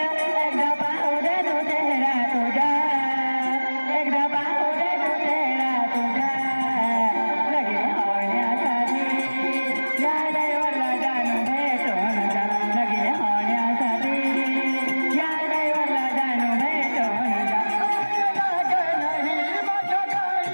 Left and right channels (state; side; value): inverted; both; correlation -1.00